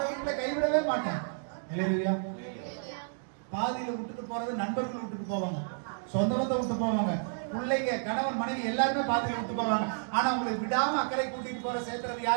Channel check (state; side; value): silent; left; digital silence